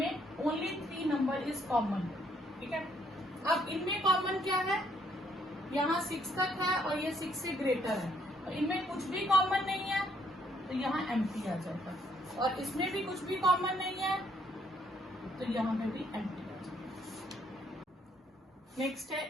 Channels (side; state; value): both; normal; correlation 0.69